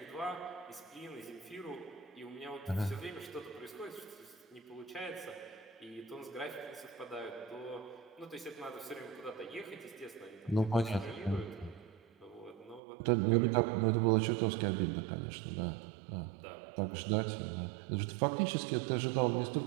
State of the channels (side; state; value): left; drops out; at 12.8 s